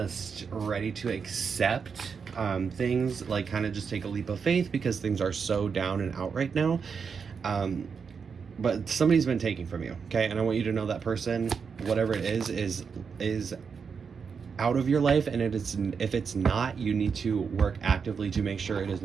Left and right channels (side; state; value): left; quieter; 6.0 dB